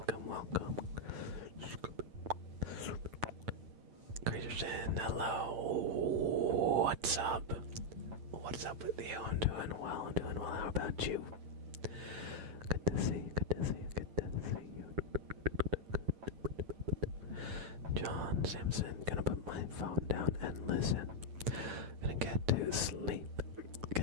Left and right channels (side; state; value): left; late; 9.0 ms